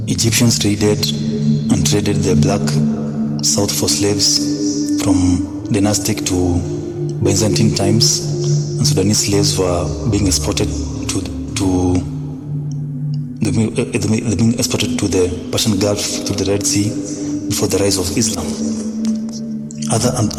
Egyptians traded the black south for slaves from dynastic to Byzantine times, and Sudanese slaves were being exported to the Persian Gulf through the Red Sea before the rise of Islam. Other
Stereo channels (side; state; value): both; identical; correlation 1.00